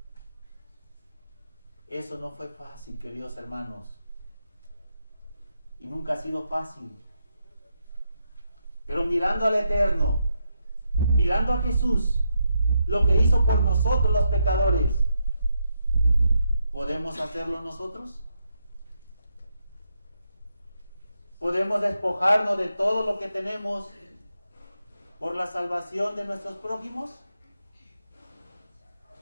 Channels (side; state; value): both; inverted; correlation -0.81